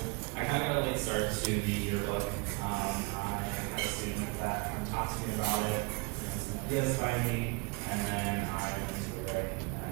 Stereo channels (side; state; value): left; quieter; 29.3 dB